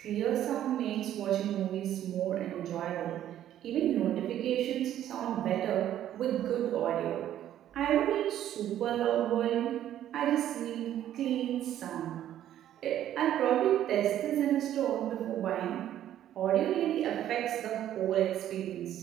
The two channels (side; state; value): left; quieter; 11.7 dB